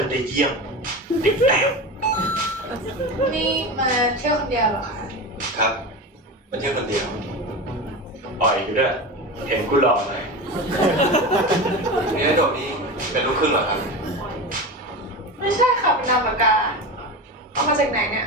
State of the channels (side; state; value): both; normal; correlation 0.25